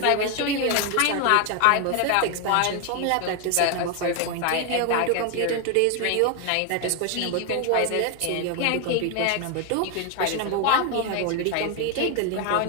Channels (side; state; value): both; different; correlation 0.01